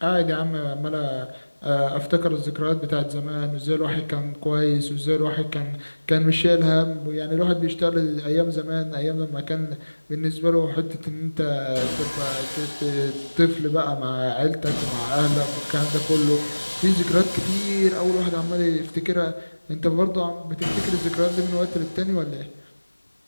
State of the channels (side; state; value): both; inverted; correlation -1.00